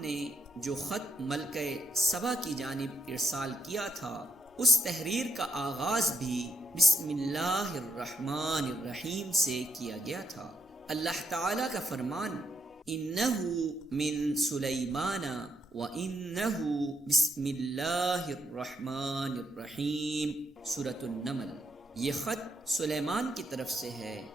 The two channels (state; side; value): normal; both; correlation 0.75